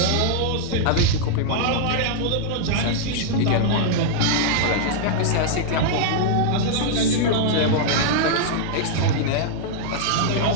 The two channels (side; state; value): both; different; correlation -0.01